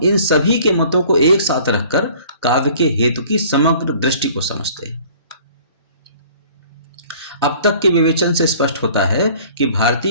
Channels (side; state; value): both; inverted; correlation -0.51